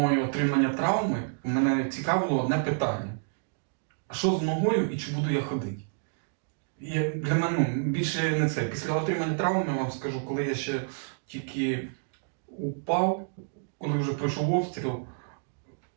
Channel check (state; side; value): silent; left; digital silence